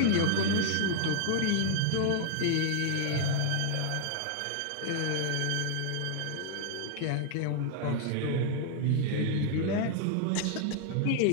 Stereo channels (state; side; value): different; both; correlation 0.00